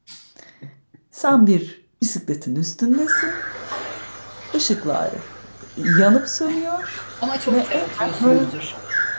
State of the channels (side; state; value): both; inverted; correlation -1.00